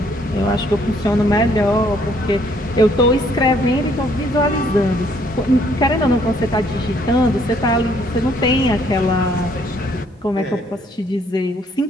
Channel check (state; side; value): normal; both; correlation 0.65